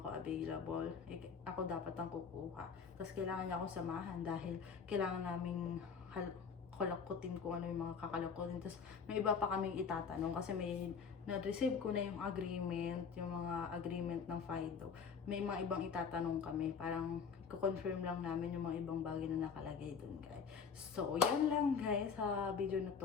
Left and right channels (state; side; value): quieter; right; 6.0 dB